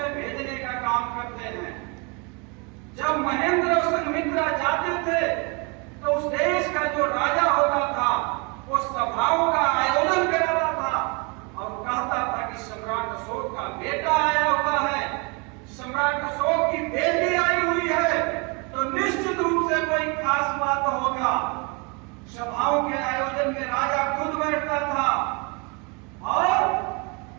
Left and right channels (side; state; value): left; quieter; 31.6 dB